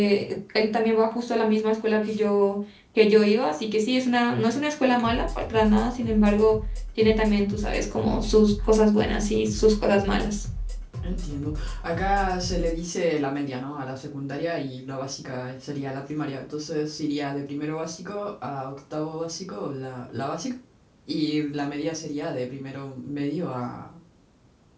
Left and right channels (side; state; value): both; identical; correlation 1.00